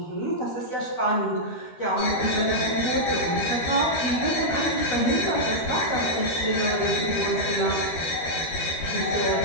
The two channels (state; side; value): late; right; 13 ms